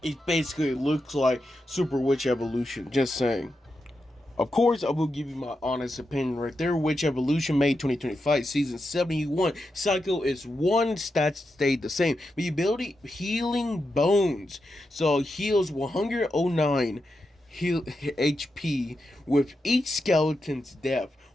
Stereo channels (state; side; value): normal; both; correlation 0.87